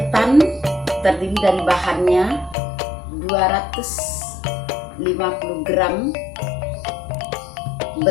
terdiri dari bahannya 250 gram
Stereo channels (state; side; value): drops out; right; at 2.6 s